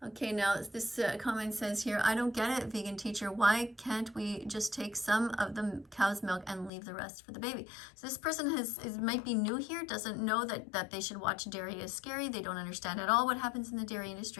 Okay, now this comment says here, I don't get it, vegan teacher. Why can't we just take some of the cow's milk and leave the rest for the baby? So this person might be new here, doesn't know that they should watch Dairy is Scary. They don't understand at all what happens in the dairy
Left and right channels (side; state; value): right; drops out; at 6.7 s